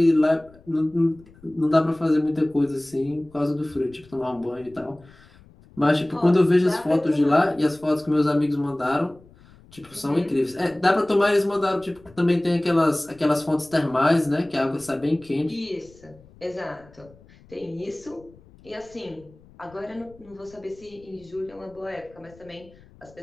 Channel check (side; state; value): left; noise; rumble, 25 dB below the sound